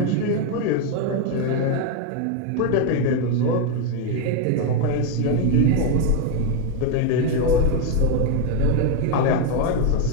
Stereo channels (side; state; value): both; different; correlation 0.01